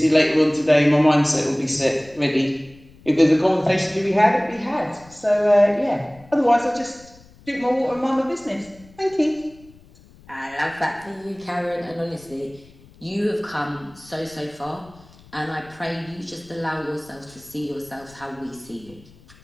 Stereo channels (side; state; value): left; noise; rumble, 25 dB below the sound